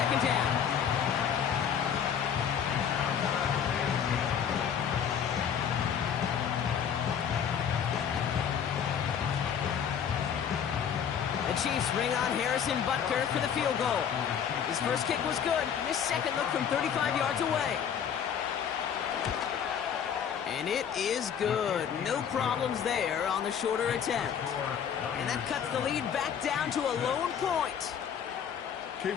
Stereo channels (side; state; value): right; quieter; 8.1 dB